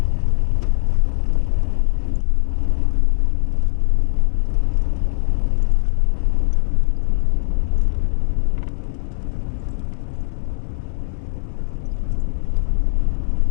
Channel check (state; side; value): silent; right; digital silence